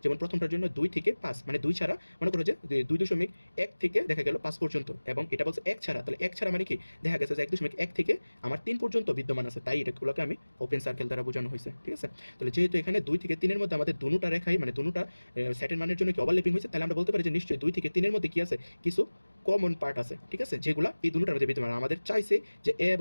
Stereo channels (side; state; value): both; inverted; correlation -1.00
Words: যেমন প্রথমটার জন্য 2 থেকে 5, মানে 2 ছাড়া মনে করো যে 2.1 থেকে দেখা গেল 5 পর্যন্ত, এবং এটা বলছে 1 ছাড়া, তাহলে 1 ছাড়া মানে কি দেখা গেছে যে 1.1 থেকে আমার 3 পর্যন্ত বিদ্যমান আছে, তাই এটাগুলোকে আমি ওপেন সার্কেল দ্বারা বোঝানো হয়েছে, ঠিক আছে। তাহলে যেহেতু এখানে 2 থেকে 3 এর মধ্যে আমাদের দুটোটা রেখাই, মানে দুটোটা সেটের মানের জন্য কি ওভারল্যাপিং হয়েছে, তাহলে আমরা বলতে পারি যে নিশ্চয়ই 2 থেকে 3 এর মধ্যে কি আছে কিছু কমন পার্ট আছে, ঠিক আছে, যেগুলো এই দুটোটার মধ্যে বিদ্যমান। আমাদের চাইছে যে এ